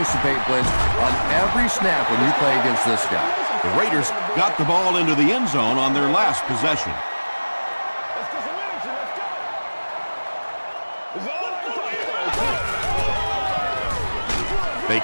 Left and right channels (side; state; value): both; inverted; correlation -1.00